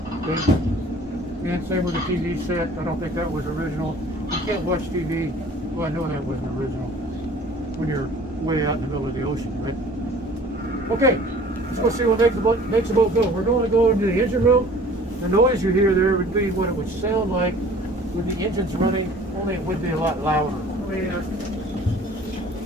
Okay? And same with the TV set. I don't think that was original. You can't watch TV. Well, I know that wasn't original when you're way out in the middle of the ocean, right? Okay, let's go see what makes the boat go. We're going to go into the engine room. The noise you hear there would be what it would sound like with the engines running, only it would be a lot louder.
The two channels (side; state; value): both; normal; correlation 0.49